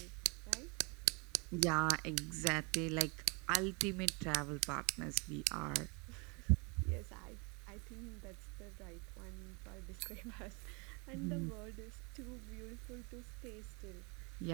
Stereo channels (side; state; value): left; quieter; 31.1 dB